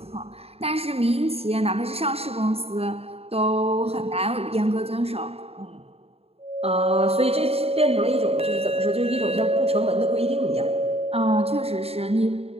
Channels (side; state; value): left; late; 0.29 ms